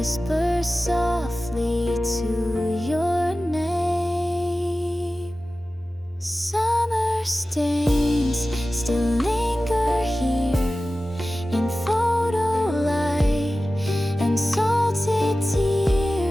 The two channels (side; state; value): both; normal; correlation 0.96